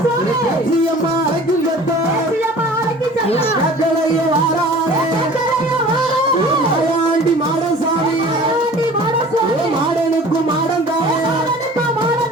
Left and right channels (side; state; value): both; normal; correlation 0.44